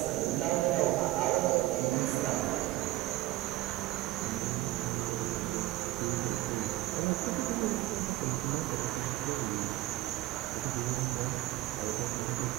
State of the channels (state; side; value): quieter; left; 16.5 dB